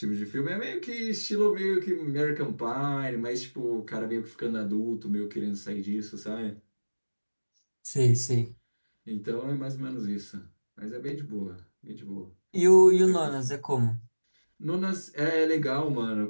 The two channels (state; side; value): inverted; both; correlation -1.00